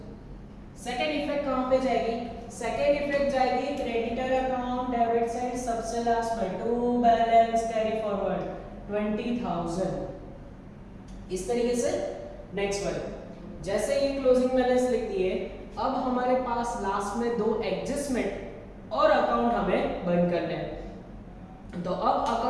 Second effect कहाँ पे जाएगी? सेकेंड इफेक्ट जाएगी क्रेडिटर अकाउंट डेबिट साइड सबसे लास्ट में, टू बैलेंस कैरी फॉरवर्ड 20,000। इस तरीके से नेक्स्ट वन, जैसे ये क्लोजिंग बैलेंस लिख दिए, अब हमारे पास लास्ट में दो एडजस्टमेंट और अकाउंट हमें बंद करने हैं। तो अब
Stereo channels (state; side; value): identical; both; correlation 1.00